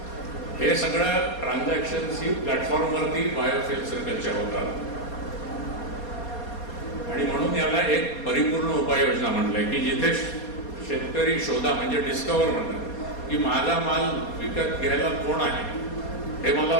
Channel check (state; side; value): late; right; 4.2 ms